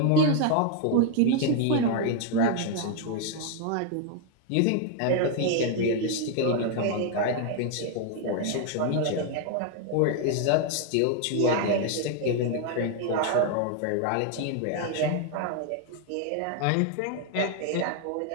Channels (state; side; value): different; both; correlation 0.00